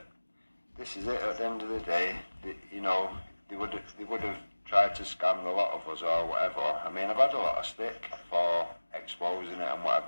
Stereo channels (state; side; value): inverted; both; correlation -1.00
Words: This is it. At the end of the day, they would have tried to scam a lot of us or whatever. I mean, I've had a lot of stick for exposing it and